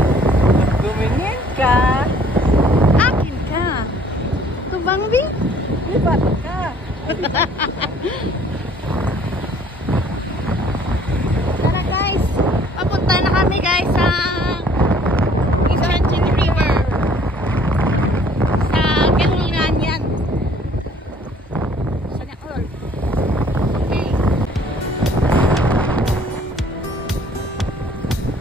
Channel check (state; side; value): normal; both; correlation 0.57